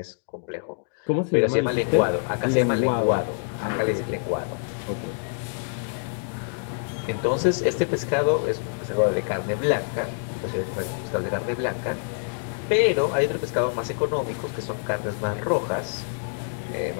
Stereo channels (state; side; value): silent; right; digital silence